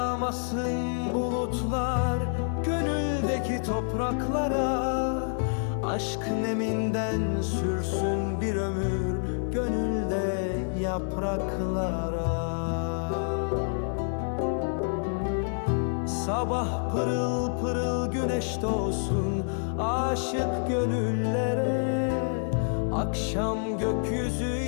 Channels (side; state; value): right; silent; 59 dB below the other